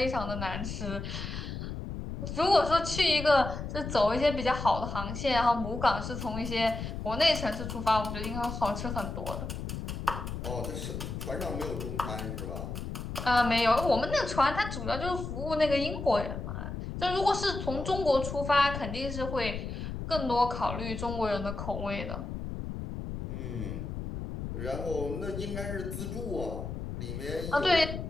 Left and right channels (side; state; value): left; noise; rumble, 6 dB below the sound